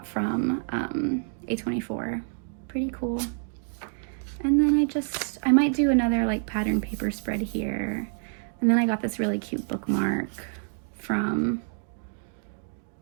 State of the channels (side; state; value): left; silent; 56 dB below the other